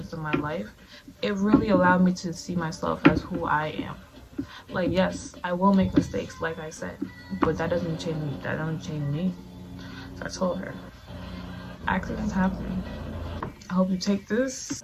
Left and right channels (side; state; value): both; identical; correlation 1.00